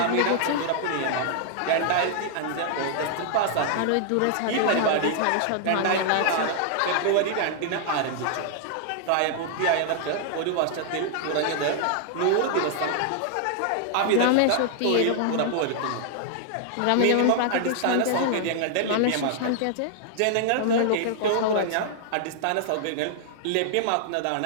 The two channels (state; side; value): different; both; correlation -0.01